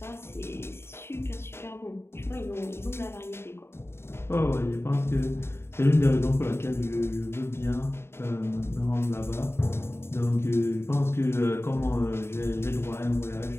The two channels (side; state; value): right; late; 0.12 ms